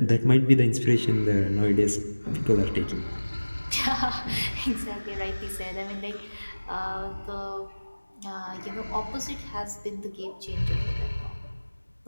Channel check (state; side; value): inverted; both; correlation -1.00